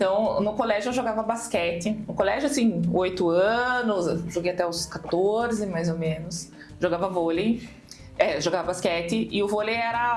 no colégio eu jogava basquete. No colégio, assim, 8 anos, joguei até os 14, mais ou menos. Jogava vôlei, jogava basquete. E o vôlei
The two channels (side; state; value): both; identical; correlation 1.00